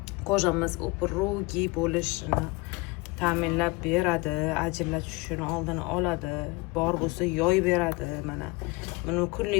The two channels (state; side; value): quieter; right; 25.1 dB